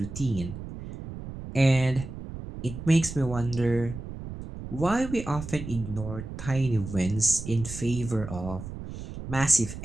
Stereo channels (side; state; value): right; noise; rumble, 10 dB below the sound